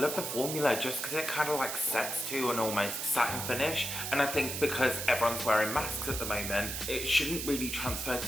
the formula, just because it kind of like sets to an almost satin finish. And I think because everyone's wearing masks at the moment, it shouldn't really transfer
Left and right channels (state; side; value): noise; right; hiss, 4 dB below the sound